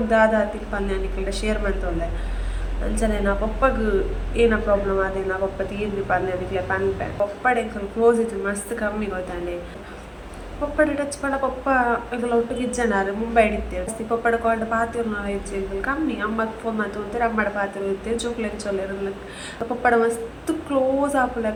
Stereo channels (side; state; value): both; identical; correlation 1.00